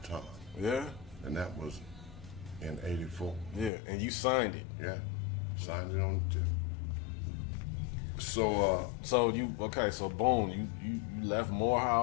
Yeah. And that was in '84. Yeah, and you signed it. Yeah, signed it on the tip. So boom, you left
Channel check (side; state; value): right; drops out; at 3.7 s